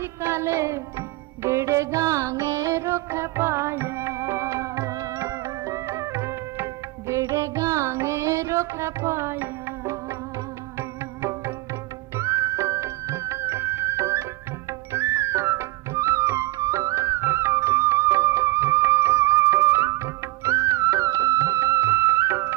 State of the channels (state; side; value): quieter; left; 19.2 dB